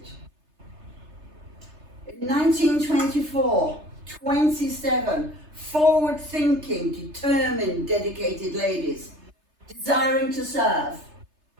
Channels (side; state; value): left; late; 3.3 ms